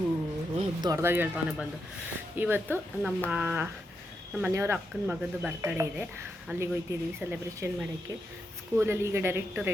ದೊಡ್ಡದಾಗಿ ಹೇಳ್ತಾನೆ ಬಂದು. ಇವತ್ತು ನಮ್ಮ ಮನೆಯವರ ಅಕ್ಕನ ಮಗದ್ದು ಬರ್ತಡೇ ಇದೆ. ಅಲ್ಲಿಗೆ ಹೋಗ್ತಿದ್ದೀವಿ ಸೆಲೆಬ್ರೇಷನ್ ಮಾಡೋಕ್ಕೆ. ಸ್ಕೂಲಲ್ಲಿ ಈಗ ಡೈರೆಕ್ಟ್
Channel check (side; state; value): both; normal; correlation 0.84